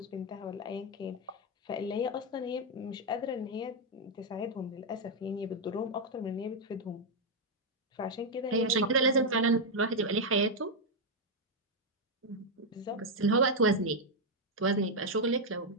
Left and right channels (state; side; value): normal; both; correlation 0.00